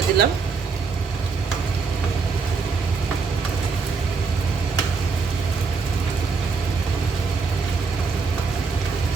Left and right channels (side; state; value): left; quieter; 4.9 dB